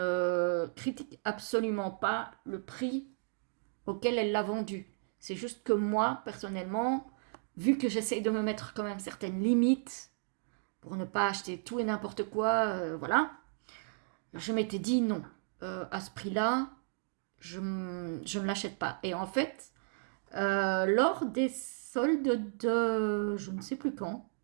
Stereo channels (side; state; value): left; silent; digital silence